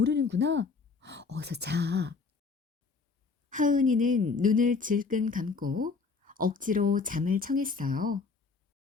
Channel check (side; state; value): right; quieter; 4.6 dB